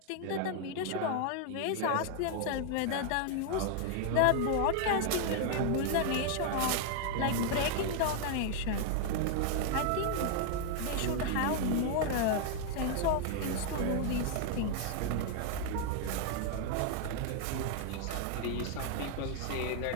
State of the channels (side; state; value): both; different; correlation 0.00